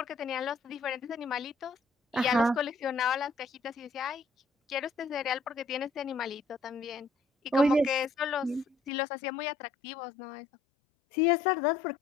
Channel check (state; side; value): drops out; right; at 8.9 s